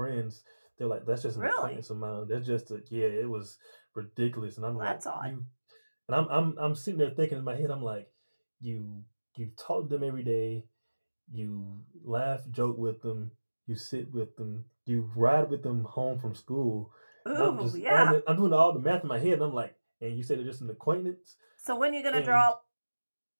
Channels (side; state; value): both; inverted; correlation -1.00